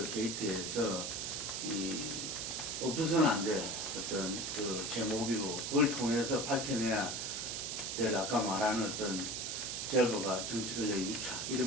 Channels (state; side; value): noise; right; hiss, 3 dB below the sound